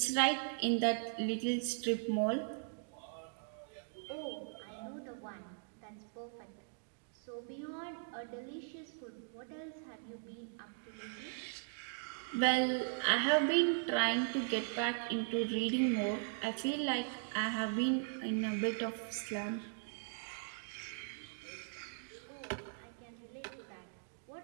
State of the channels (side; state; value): left; silent; digital silence